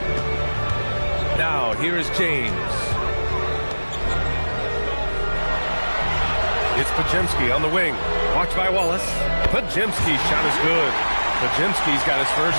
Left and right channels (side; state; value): both; inverted; correlation -1.00